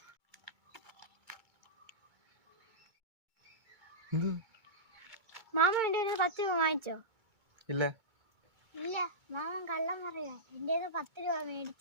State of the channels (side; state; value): left; late; 2.2 ms